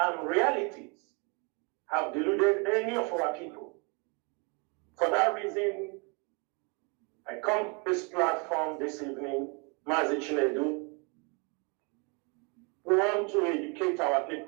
realities have deluded any of our people. For that reason, I come to this platform this evening, Maazi Chinedu. We want to educate our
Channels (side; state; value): left; quieter; 33.3 dB